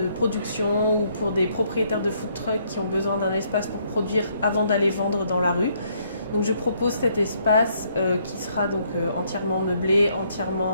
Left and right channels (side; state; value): both; inverted; correlation -0.69